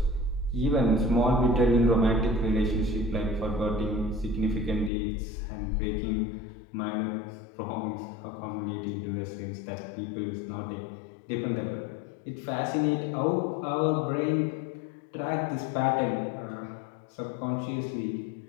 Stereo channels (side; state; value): right; drops out; at 4.9 s